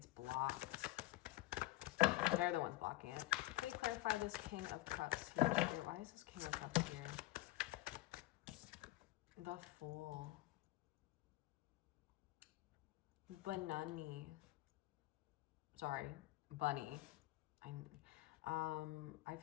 blocked. They're the ones blocking it. Can we clarify this King of Cups here? Why is this King of Cups here? The Fool. Banani. Sorry, Bunny. I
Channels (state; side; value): quieter; right; 18.3 dB